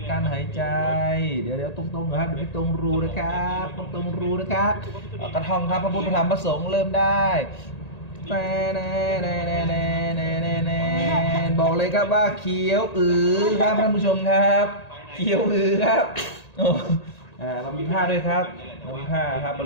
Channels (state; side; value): late; right; 1.9 ms